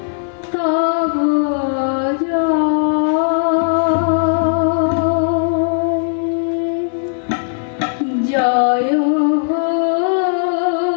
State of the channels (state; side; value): silent; right; digital silence